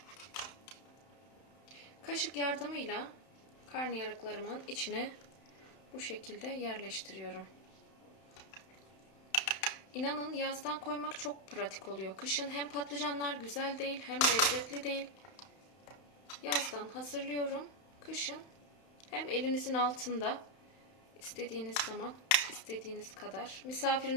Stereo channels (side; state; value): right; late; 31 ms